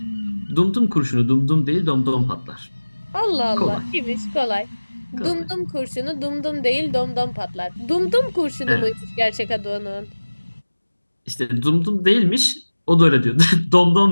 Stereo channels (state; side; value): inverted; both; correlation -1.00